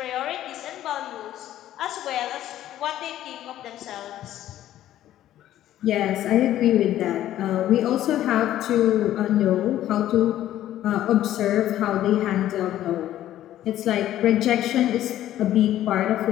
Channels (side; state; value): right; quieter; 12.8 dB